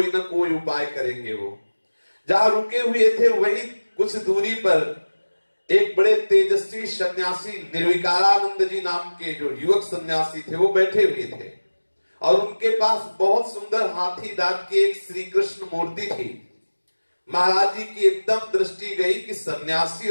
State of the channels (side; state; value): both; inverted; correlation -1.00